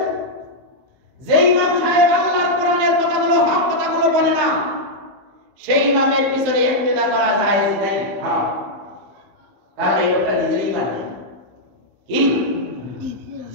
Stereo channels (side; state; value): left; late; 15 ms